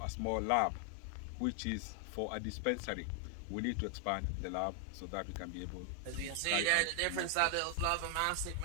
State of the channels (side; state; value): both; different; correlation 0.00